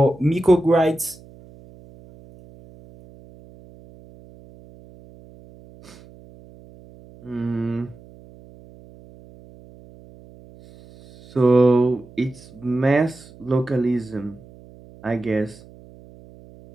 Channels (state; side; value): noise; right; hum, 23 dB below the sound